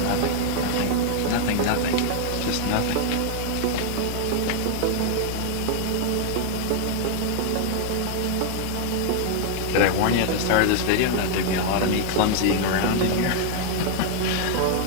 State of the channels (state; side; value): different; both; correlation 0.00